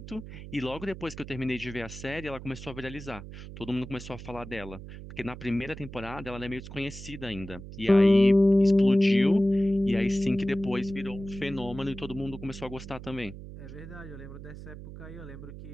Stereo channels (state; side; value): noise; right; hum, 13 dB below the sound